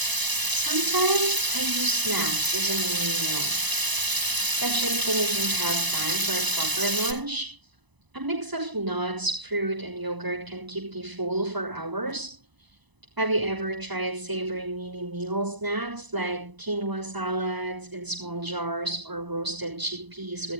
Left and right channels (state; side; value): late; left; 1.0 ms